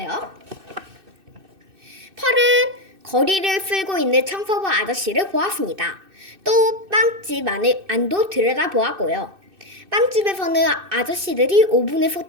펄은 거리를 쓸고 있는 청소부 아저씨를 보았습니다. 또 빵집 안도 들여다보았고요. 빵집에서는 아저씨들이 오븐에서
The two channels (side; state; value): left; late; 2.6 ms